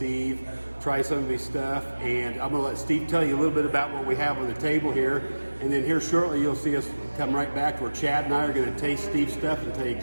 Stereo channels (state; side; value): inverted; both; correlation -1.00